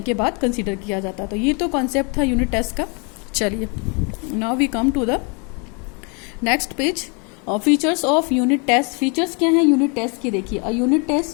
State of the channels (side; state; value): right; quieter; 34.2 dB